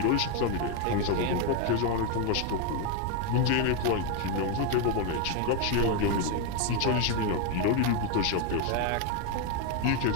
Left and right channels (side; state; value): both; different; correlation 0.01